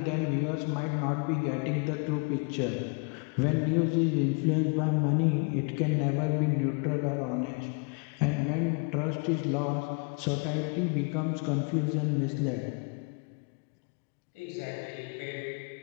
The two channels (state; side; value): quieter; right; 34.5 dB